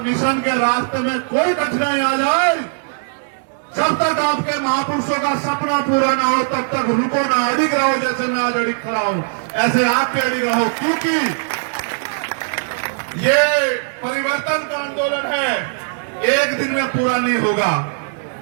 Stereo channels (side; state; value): left; silent; digital silence